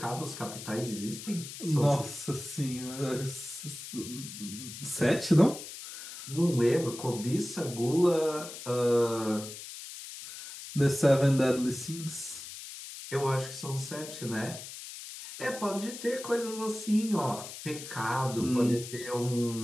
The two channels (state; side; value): noise; left; hiss, 11 dB below the sound